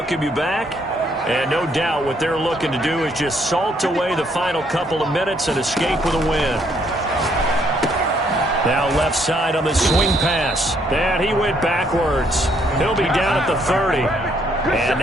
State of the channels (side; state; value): both; normal; correlation 0.69